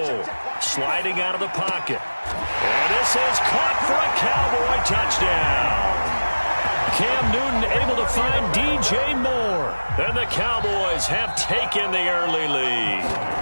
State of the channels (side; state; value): both; inverted; correlation -1.00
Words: Sliding out of the pocket. And this is caught for a Cowboy touchdown. Cam Newton able to find DJ Moore. And the Cowboys have taken the early lead.